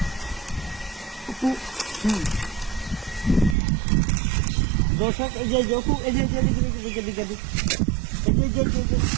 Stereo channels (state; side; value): drops out; left; at 3.6 s